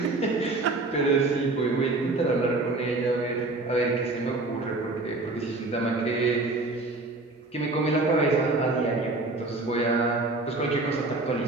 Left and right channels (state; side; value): quieter; left; 3.1 dB